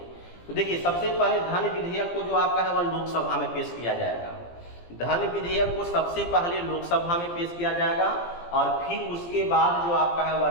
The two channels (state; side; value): late; right; 17 ms